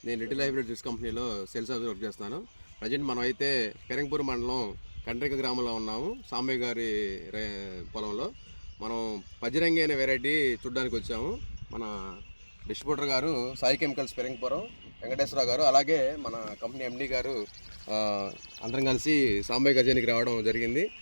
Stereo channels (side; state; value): both; inverted; correlation -1.00